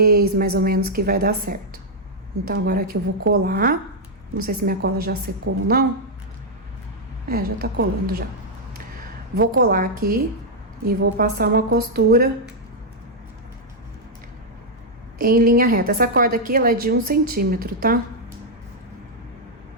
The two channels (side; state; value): both; normal; correlation -0.04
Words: mais ou menos, que vai dar certo. Então, agora aqui eu vou colar. Não sei se minha cola já secou ou não. É, já tá colando já. Vou colar aqui e vou passar uma costura em linha reta. Essa corda aqui, ela é de 1 centímetro, tá?